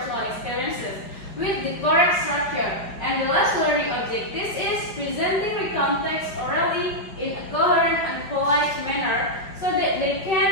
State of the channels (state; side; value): late; right; 5.2 ms